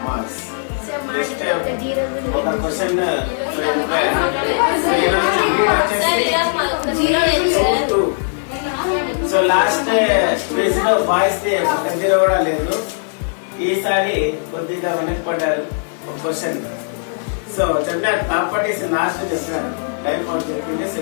marks. Just ఒక question so last quiz లో boys the zero కూడా లేదు. ఈసారి కొద్దిగా వెనక్కిపడ్డారు ఒక question. So చెప్పినారు properties last చెప్పినారు, life out చెప్పింటే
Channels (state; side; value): silent; right; digital silence